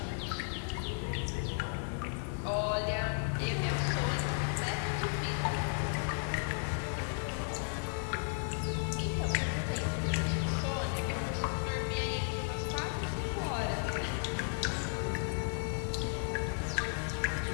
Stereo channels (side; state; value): right; silent; digital silence